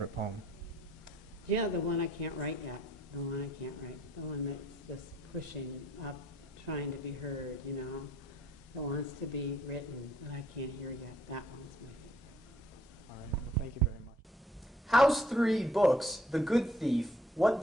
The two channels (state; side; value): normal; both; correlation 0.63